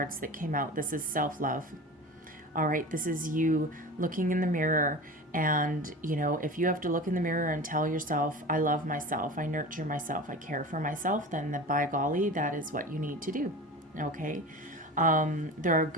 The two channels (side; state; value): both; normal; correlation 0.33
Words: that came out, this is self-love. All right, this is you looking in the mirror, and if you have to look in the mirror and tell yourself, I love myself, I nurture myself, I care for myself, then by golly, that is what you need to do. Okay, there are